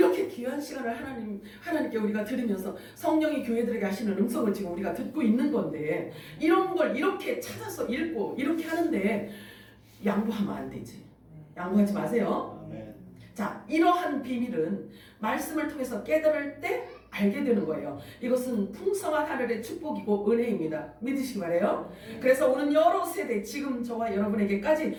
귀한 시간을 하나님께 우리가 드리면서 성령이 교회들에게 하시는 음성을 지금 우리가 듣고 있는 건데 이런 걸 이렇게 찾아서 읽고 이렇게 하는데 양보하면 안 되지. 양보하지 마세요. 아멘. 자, 이러한 비밀은 말씀을 통해서 깨달을 때 알게 되는 거예요. 이것은 풍성한 하늘의 축복이고 은혜입니다. 믿으시기 바래요. 그래서 오늘 여러 세대 지금 저와 여러분에게까지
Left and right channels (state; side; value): identical; both; correlation 1.00